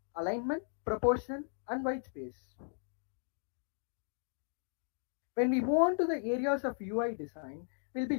alignment, proportion, and white space. When we move on to the areas of UI design, we'll be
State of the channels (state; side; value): silent; right; digital silence